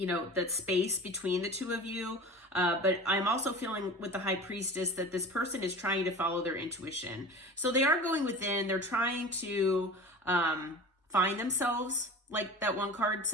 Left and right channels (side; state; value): both; normal; correlation 0.36